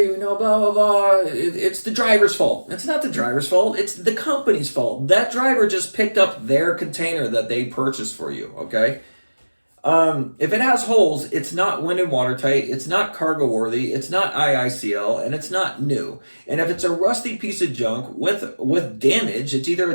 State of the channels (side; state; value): both; inverted; correlation -1.00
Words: blah, blah, blah. It's the driver's fault. It's not the driver's fault. It's the company's fault. That driver just picked up their container that they purchased for you, okay? If it has holes, it's not wind and watertight, it's not cargo worthy, it's not IICL, and it's not new. And if it's a rusty piece of junk with damage, it's either